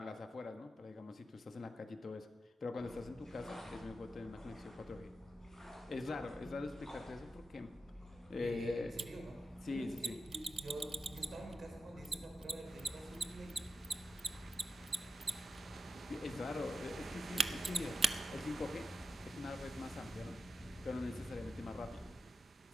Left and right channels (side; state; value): both; normal; correlation 0.89